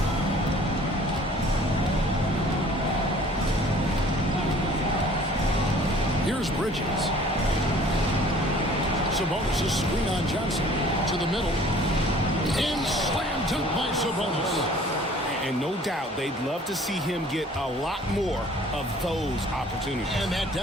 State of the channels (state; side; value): normal; both; correlation 0.52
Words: Here's Bridges. Sabonis' screen on Johnson to the middle. And slam dunk by Sabonis. And no doubt they'd love to see him get a lot more of those opportunities. And that